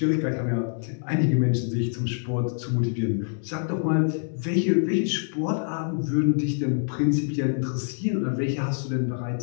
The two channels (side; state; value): right; silent; digital silence